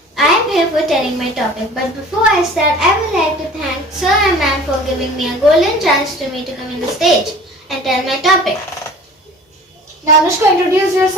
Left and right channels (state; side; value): normal; both; correlation 0.44